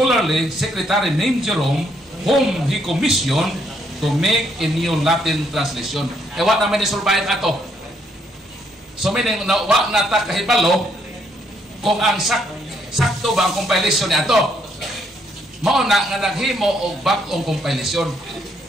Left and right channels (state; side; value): normal; both; correlation 0.72